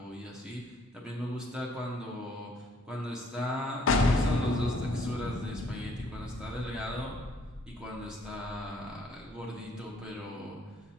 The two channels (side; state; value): both; normal; correlation 0.63